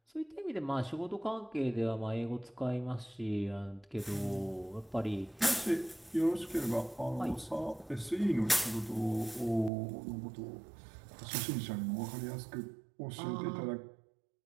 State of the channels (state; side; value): drops out; left; at 9.7 s